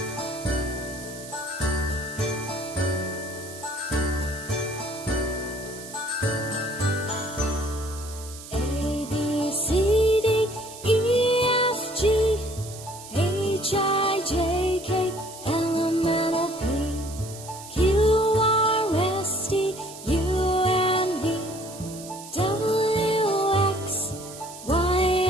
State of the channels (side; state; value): right; noise; hiss, 15 dB below the sound